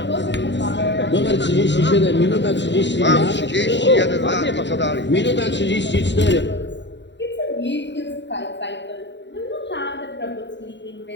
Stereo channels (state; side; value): late; right; 0.52 ms